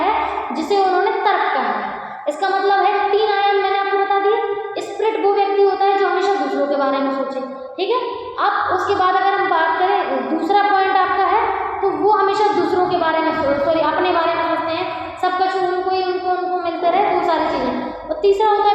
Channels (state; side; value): identical; both; correlation 1.00